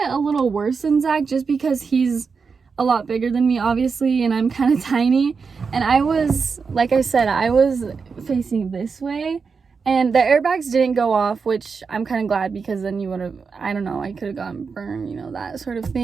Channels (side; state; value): left; quieter; 5.3 dB